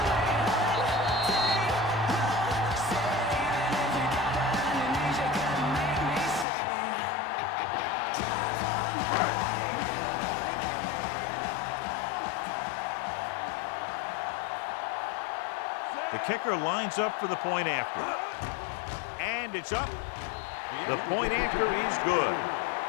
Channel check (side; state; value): right; drops out; at 6.5 s